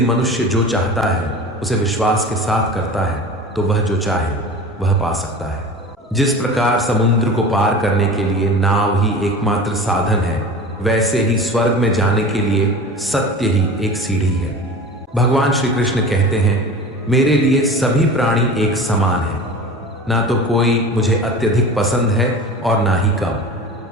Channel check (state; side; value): normal; both; correlation 0.35